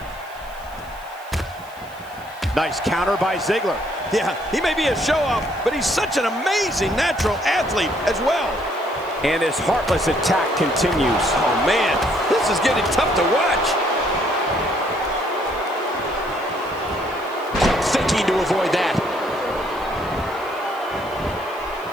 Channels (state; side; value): noise; right; hiss, 25 dB below the sound